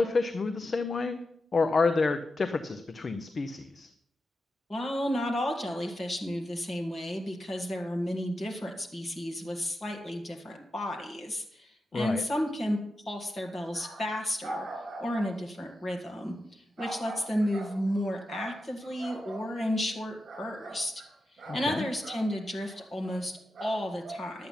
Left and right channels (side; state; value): both; normal; correlation 0.90